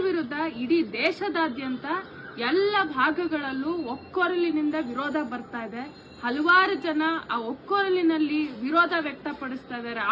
ವಿರುದ್ಧ ಇಡೀ ದೇಶದಾದ್ಯಂತ ಎಲ್ಲ ಭಾಗಗಳಲ್ಲೂ ಒಕ್ಕೊರಲಿನಿಂದ ವಿರೋಧ ಬರ್ತಾ ಇದೆ. ಹಲವಾರು ಜನ ಆ ಒಕ್ಕೊರಲಿನಲ್ಲಿ ವಿರೋಧ ವ್ಯಕ್ತಪಡಿಸ್ತಾ ಇದ್ದಾರೆ,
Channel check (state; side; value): identical; both; correlation 1.00